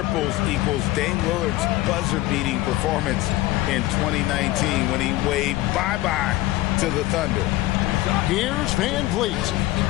equals Dame Lillard's buzzer-beating performance in 2019 when he waved bye-bye to the Thunder. Here's Van Vliet.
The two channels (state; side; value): quieter; right; 17.1 dB